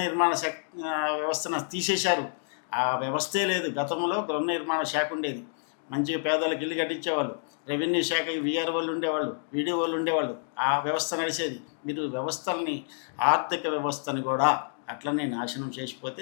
నిర్మాణ వ్యవస్థను తీసేశారు. ఆ వ్యవస్థే లేదు. గతంలో గృహ నిర్మాణ శాఖ ఉండేది, మంచిగా పేదలకు ఇల్లు కట్టించేవాళ్ళు. రెవెన్యూ శాఖ వీఆర్ వాళ్ళు ఉండేవాళ్ళు, వీడియో వాళ్ళు ఉండేవాళ్ళు. ఆ వ్యవస్థ నడిచేది. మీరు వ్యవస్థల్ని, ఆర్థిక వ్యవస్థని కూడా అట్లనే నాశనం చేసిపోతే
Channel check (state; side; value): silent; right; digital silence